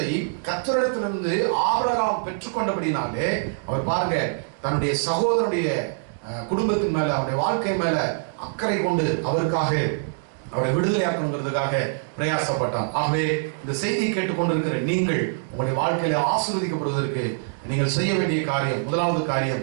கர்த்தரிடத்திலிருந்து ஆபிரகாம் பெற்றுக்கொண்டபடினாலே அவர் பாருங்க, தன்னுடைய சகோதரனுடைய குடும்பத்தின் மேல, அவருடைய வாழ்க்கை மேல அக்கறை கொண்டு அவருக்காக அவரை விடுதலையாக்கணுங்கிறதுக்காக பிரயாசப்பட்டார். ஆகவே இந்த செய்தியை கேட்டுக்கொண்டிருக்கிற நீங்கள் உங்களுடைய வாழ்க்கையில ஆசீர்வதிக்கப்படுவதற்கு நீங்கள் செய்ய வேண்டிய காரியம், முதலாவது காரியம்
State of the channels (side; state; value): left; silent; digital silence